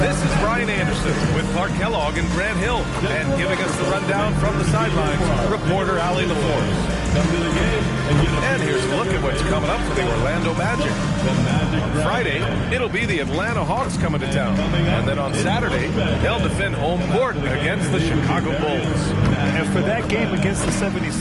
is Brian Anderson with Clark Kellogg and Grant Hill. And giving us the rundown from the sidelines, reporter Allie LaForce. And here's a look at what's coming up for the Orlando Magic. On Friday, it'll be the Atlanta Hawks coming to town. And then on Saturday, they'll defend home court against the Chicago Bulls. And for that game against the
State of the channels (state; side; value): identical; both; correlation 1.00